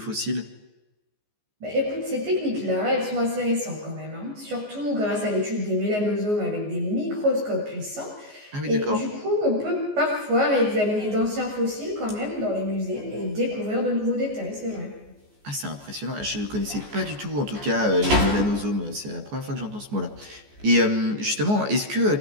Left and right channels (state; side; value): late; left; 14 ms